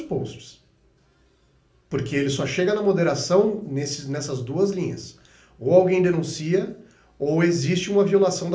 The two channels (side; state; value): both; identical; correlation 1.00